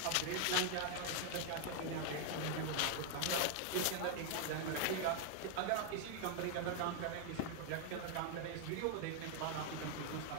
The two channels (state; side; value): different; both; correlation 0.00